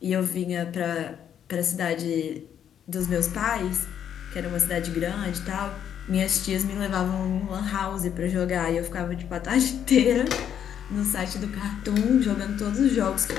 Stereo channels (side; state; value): right; quieter; 9.2 dB